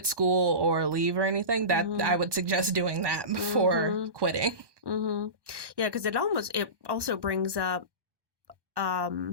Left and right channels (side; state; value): left; late; 1.1 ms